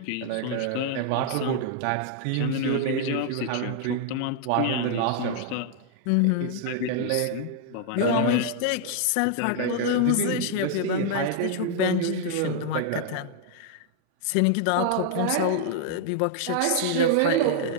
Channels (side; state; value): both; different; correlation -0.01